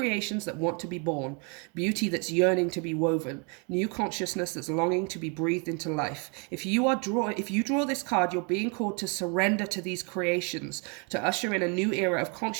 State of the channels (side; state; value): left; quieter; 35.4 dB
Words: that want to be born, beauty that's yearning to be woven, new consciousness that's longing to be breathed into life. If you draw this card, you're being called to surrender to these creations, to usher in a new era of